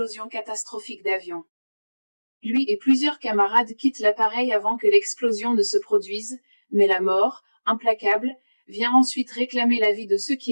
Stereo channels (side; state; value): both; inverted; correlation -1.00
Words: catastrophique d'avion. Lui et plusieurs camarades quittent l'appareil avant que l'explosion ne se produise, mais la mort, implacable, vient ensuite réclamer la vie de ceux qui